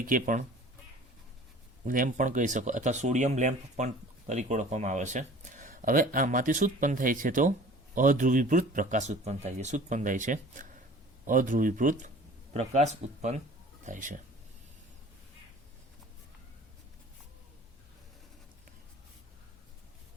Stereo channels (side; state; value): both; normal; correlation 0.46